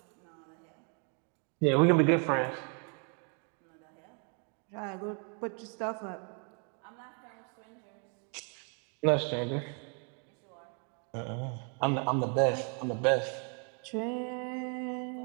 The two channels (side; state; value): left; quieter; 39.8 dB